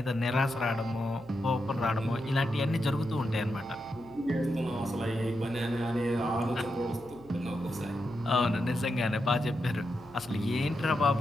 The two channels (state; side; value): noise; right; hum, 21 dB below the sound